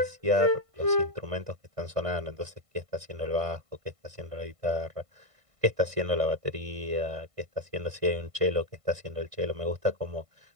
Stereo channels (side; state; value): left; late; 1.5 ms